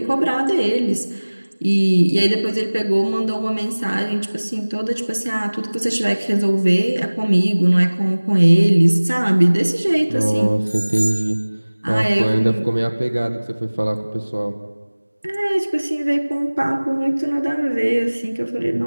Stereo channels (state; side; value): inverted; both; correlation -1.00